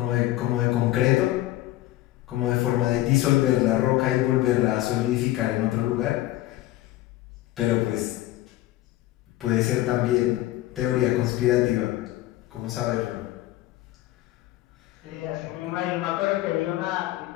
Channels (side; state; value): right; quieter; 15.8 dB